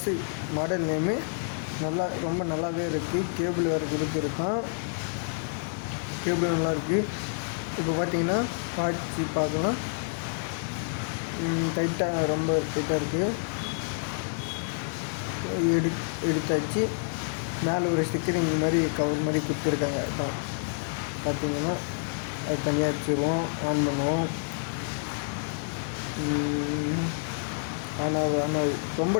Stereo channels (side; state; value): right; silent; digital silence